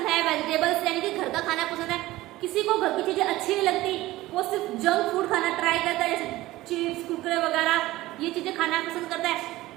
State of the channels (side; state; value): left; quieter; 17.5 dB